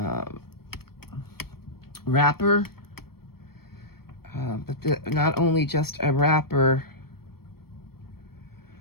wrapper. But not only just a wrapper,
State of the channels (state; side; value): late; right; 0.94 ms